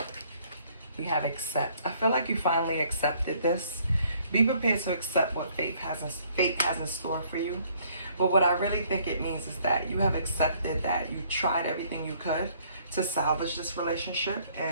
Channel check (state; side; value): inverted; both; correlation -0.63